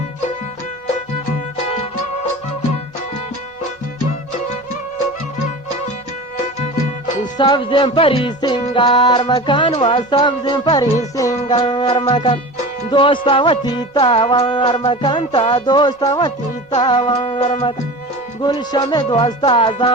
سبز پری سنگار مکان و سبز پری سنگار مکان دوستا و تیتا وار مکان تا دوستا و تیتا وار مکان گلشم دوستا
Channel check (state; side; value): normal; both; correlation 0.33